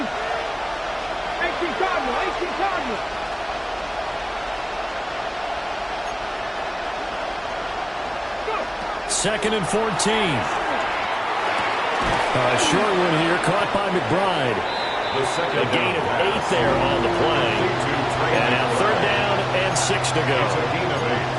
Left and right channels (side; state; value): both; identical; correlation 1.00